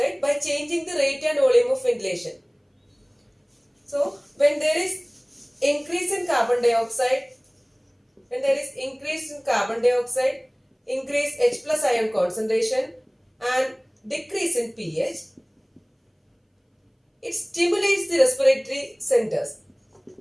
by changing the rate and volume of ventilation. So, when there is increase in carbon dioxide, increase H plus ion concentration and decrease in pH, it stimulates the respiratory centers.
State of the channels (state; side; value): identical; both; correlation 1.00